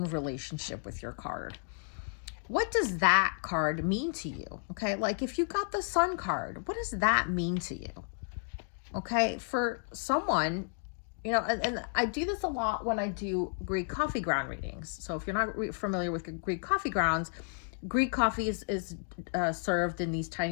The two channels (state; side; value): silent; right; 56 dB below the other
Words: relationship with your card. What does that card mean to you? Okay, like if you got the Sun card, what does that mean to you? Okay, for someone, you know, and I do this a lot when I do Greek coffee ground readings. So if you're not familiar with Greek coffee grounds, Greek coffee is served in these